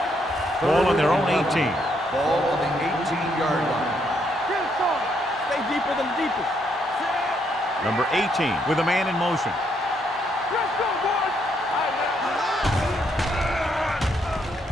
Ball on their own 18. Ball on the 18-yard line. Get it, son. Stay deeper than the deepest. Number 18 with a man in motion. Let's go, boys.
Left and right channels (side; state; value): both; normal; correlation 0.74